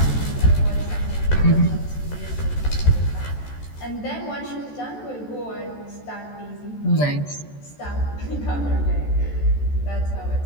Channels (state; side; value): late; right; 14 ms